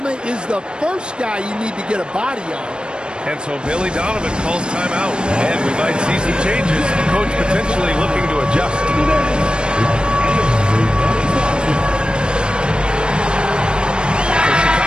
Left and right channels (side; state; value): left; late; 0.053 ms